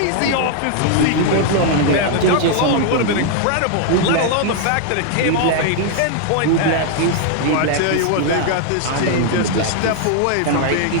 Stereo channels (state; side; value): different; both; correlation 0.00